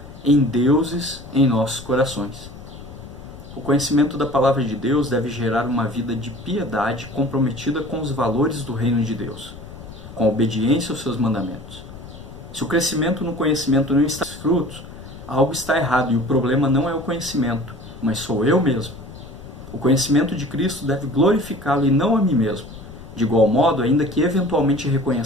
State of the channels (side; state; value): left; noise; rumble, 15 dB below the sound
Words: em deuses em nossos corações. O conhecimento da palavra de Deus deve gerar uma vida de piedade comprometida com os valores do reino de Deus, com a obediência aos seus mandamentos. Se o crescimento no conhecimento não está frutos, algo está errado e o problema não é o conhecimento, mas sou eu mesmo. O conhecimento de Cristo deve glorificá-lo e não a mim mesmo. De igual modo, ainda que eventualmente